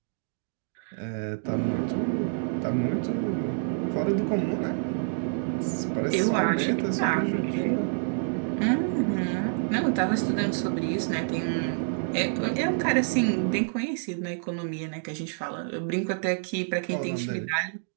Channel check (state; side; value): silent; left; digital silence